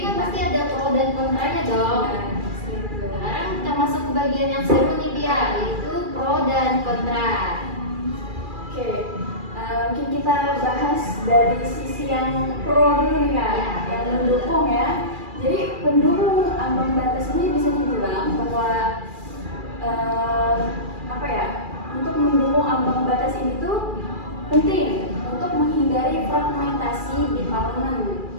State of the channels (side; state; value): left; late; 2.4 ms